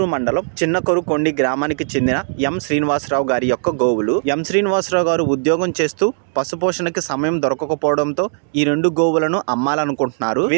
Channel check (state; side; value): silent; left; digital silence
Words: మండలం చిన్నకొరుకొండి గ్రామానికి చెందిన ఎం శ్రీనివాసరావు గారి యొక్క గోవులు। ఎం శ్రీనివాసరావు గారు ఉద్యోగం చేస్తూ పశుపోషణకి సమయం దొరకకపోవడంతో ఈ రెండు గోవులను అమ్మాలనుకుంటున్నారు।